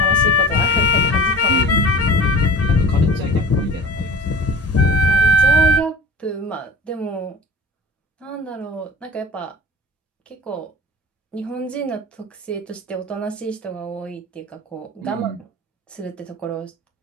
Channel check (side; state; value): both; normal; correlation 0.39